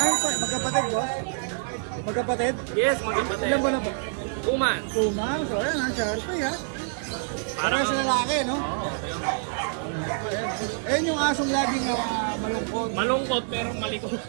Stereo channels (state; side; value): silent; left; digital silence